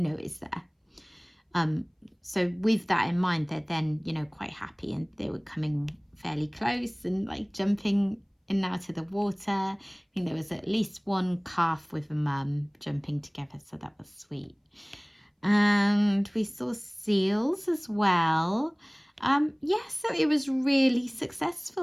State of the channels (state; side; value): identical; both; correlation 1.00